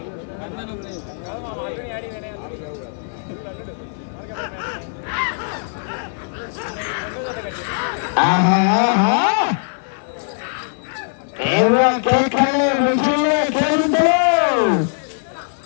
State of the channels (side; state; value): right; silent; 55 dB below the other